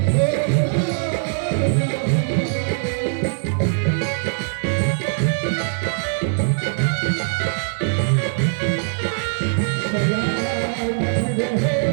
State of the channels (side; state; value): left; silent; digital silence